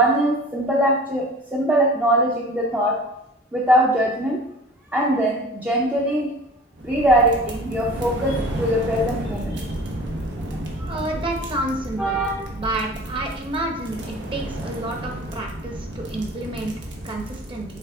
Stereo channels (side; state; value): both; normal; correlation 0.43